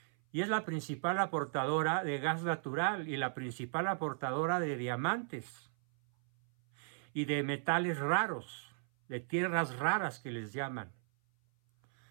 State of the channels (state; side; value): silent; left; 54 dB below the other